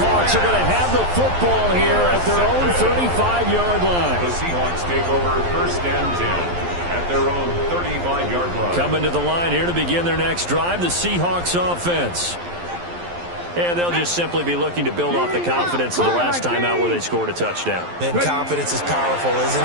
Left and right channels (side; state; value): left; late; 11 ms